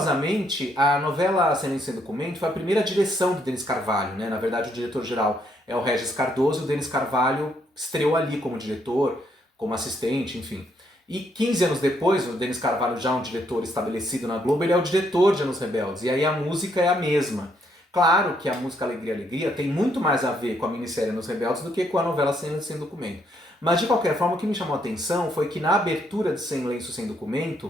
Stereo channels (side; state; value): both; normal; correlation 0.72